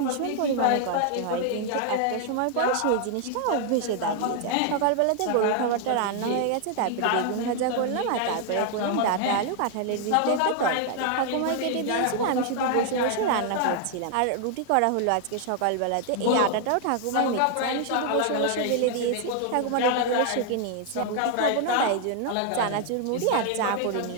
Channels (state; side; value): different; both; correlation 0.00